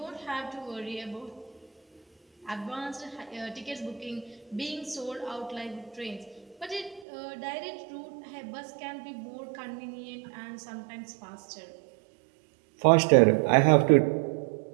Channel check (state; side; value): drops out; left; at 7.1 s